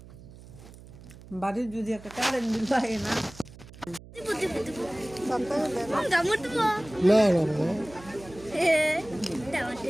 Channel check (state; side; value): noise; right; hum, 19 dB below the sound